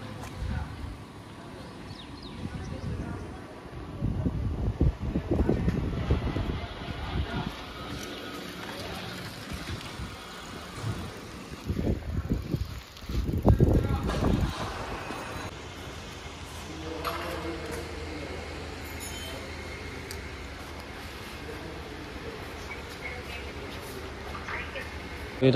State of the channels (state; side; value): identical; both; correlation 1.00